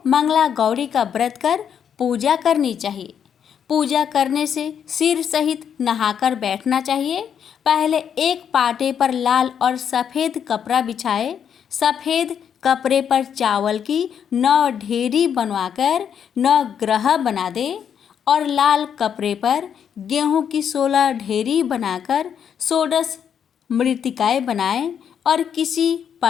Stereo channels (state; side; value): quieter; right; 8.2 dB